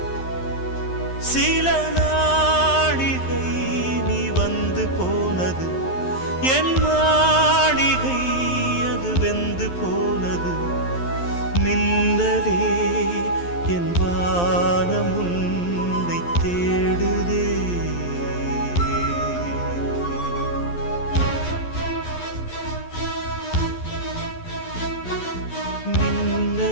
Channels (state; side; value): late; right; 11 ms